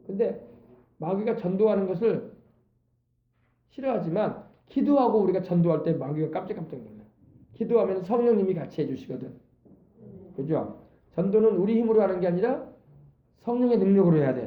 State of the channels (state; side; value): identical; both; correlation 1.00